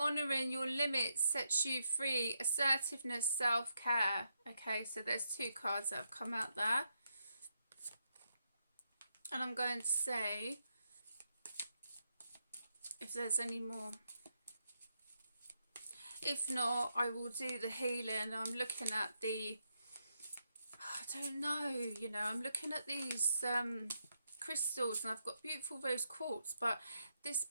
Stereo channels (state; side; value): inverted; both; correlation -0.81